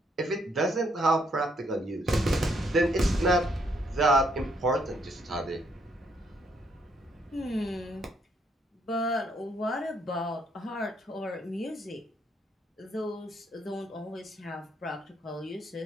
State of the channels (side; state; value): both; normal; correlation 0.71